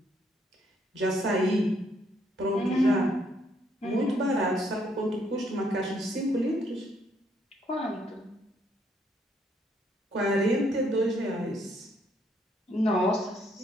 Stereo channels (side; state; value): both; normal; correlation 0.70